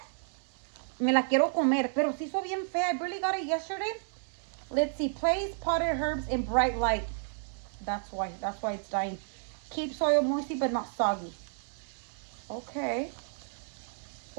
me la quiero comer. Pero se hizo bien fea. I barely got it yesterday. Let's see. Place potted herbs in bright light. That's why it's dying. Keep soil moisty but not soggy. Okay.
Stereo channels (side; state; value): left; silent; digital silence